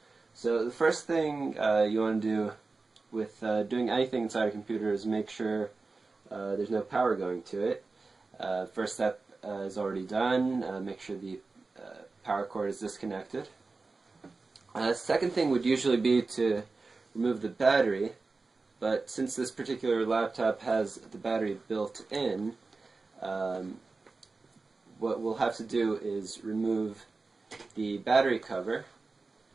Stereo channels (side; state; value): left; quieter; 3.8 dB